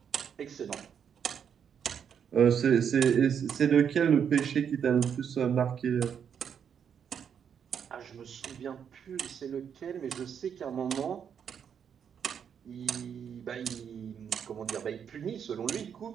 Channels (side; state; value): left; quieter; 7.8 dB